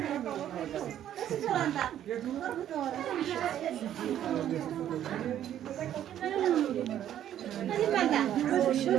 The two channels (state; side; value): quieter; left; 11.0 dB